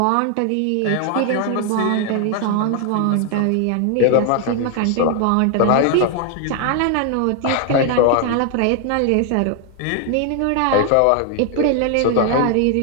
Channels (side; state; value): both; different; correlation 0.00